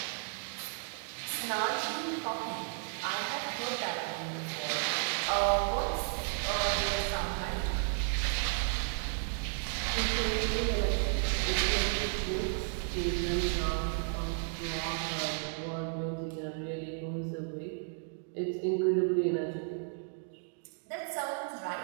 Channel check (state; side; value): silent; left; 55 dB below the other